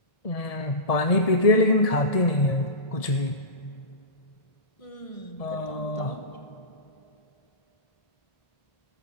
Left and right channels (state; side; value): late; right; 1.7 ms